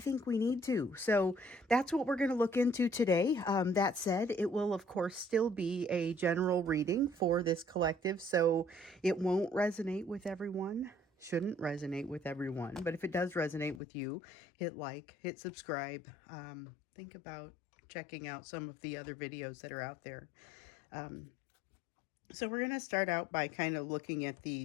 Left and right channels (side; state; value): right; drops out; at 13.8 s